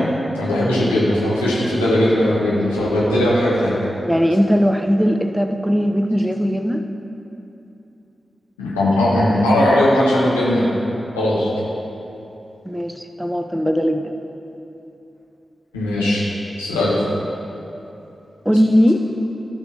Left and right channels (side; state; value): both; normal; correlation 0.91